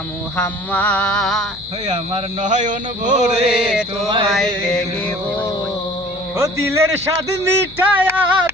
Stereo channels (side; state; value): left; noise; hum, 21 dB below the sound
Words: মুহাম্মদ, ওই আমার নয়ন ভরে তোমায় দেখিব। ও দিলের স্বাদ মিঠায়া